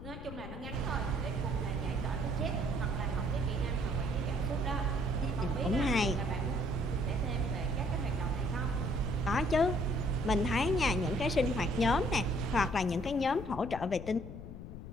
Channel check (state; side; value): noise; left; rumble, 11 dB below the sound